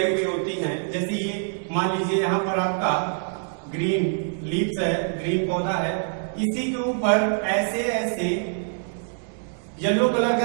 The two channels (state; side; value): silent; left; digital silence